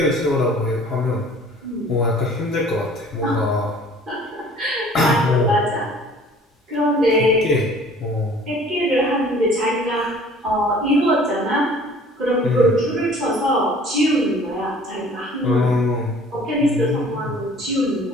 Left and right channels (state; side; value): normal; both; correlation 0.51